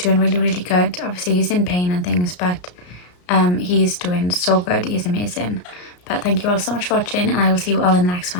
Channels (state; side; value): late; right; 33 ms